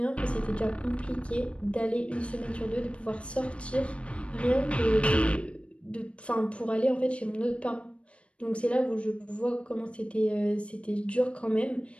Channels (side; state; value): right; late; 0.061 ms